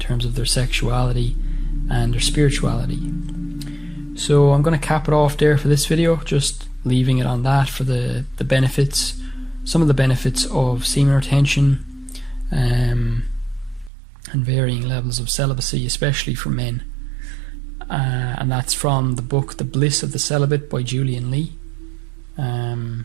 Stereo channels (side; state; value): left; drops out; at 13.9 s